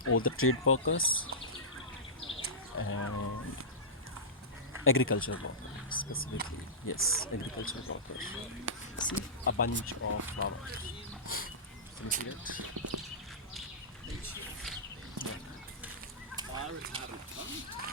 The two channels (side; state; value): both; normal; correlation -0.18